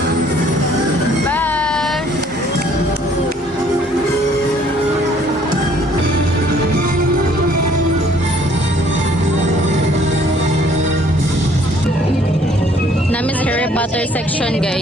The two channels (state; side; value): normal; both; correlation 0.60